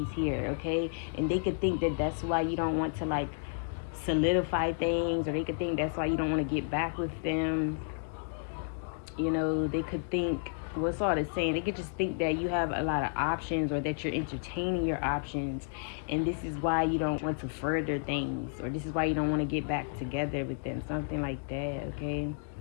here, okay? And they could think that that's why you don't want to like solidify things, or they could think that's why you don't want to get back with them. They could think, what's all the saying? They could just think that you have a lot of options, or that you're entertaining your options, and this is why you don't want to further things, or this is why you don't want to get back together with them, something like that, okay?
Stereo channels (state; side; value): silent; right; digital silence